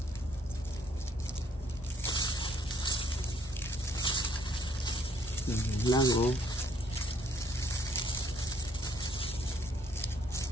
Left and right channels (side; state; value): both; normal; correlation 0.65